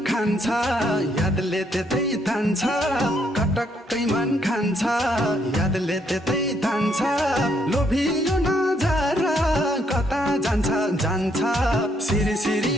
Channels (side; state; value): both; normal; correlation 0.72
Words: खान्छ यादले त्यतै तान्छ कटक्कै मन खान्छ यादले त्यतै तान्छ लोभियो नजर कता जान्छ जान्छ सिरी